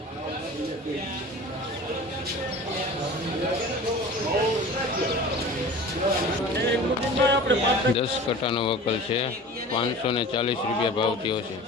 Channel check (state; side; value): normal; both; correlation 0.38